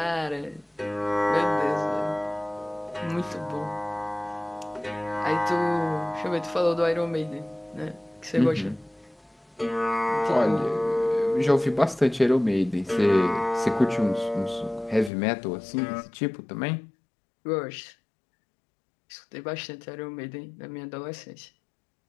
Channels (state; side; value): drops out; right; at 15.1 s